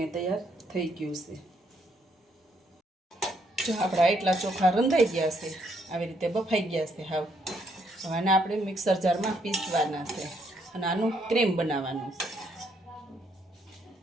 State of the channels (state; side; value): normal; both; correlation 0.72